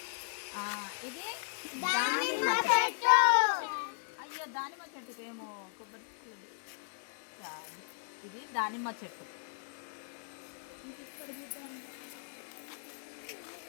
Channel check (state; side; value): silent; right; 54 dB below the other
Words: ఇది అయ్యో దానిమ్మ చెట్టుకి ఏమో కొబ్బరి. ఇది దానిమ్మ చెట్టు.